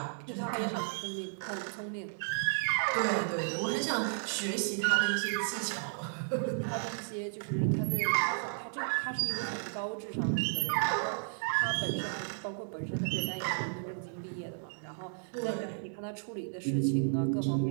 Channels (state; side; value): silent; left; digital silence